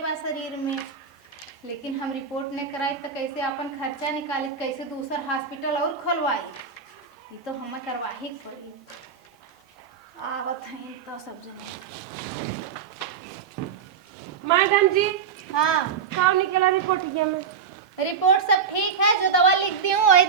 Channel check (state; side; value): quieter; left; 6.6 dB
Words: बा शरीर में। लेकिन हम रिपोर्ट नहीं कराई तो कैसे अपन खर्चा निकाली, कैसे दूसरा हॉस्पिटल और खोलवाई? ये तो हमें करवा ही पड़ी। आवत हैं तो सब जने। मैडम जी हाँ का निकला रिपोर्ट ये में? रिपोर्ट सब ठीक है, जो दवा लिख दी हूँ वही